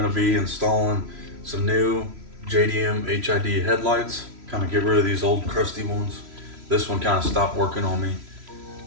to be installing some new JDM HID headlights. Kind of get rid of these old crusty ones. This one kind of stopped working on me,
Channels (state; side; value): late; left; 3.0 ms